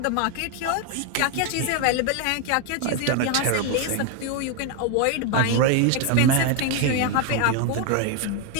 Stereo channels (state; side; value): different; both; correlation 0.01